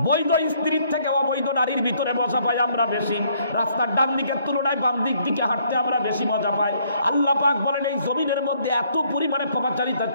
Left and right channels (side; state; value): both; inverted; correlation -0.66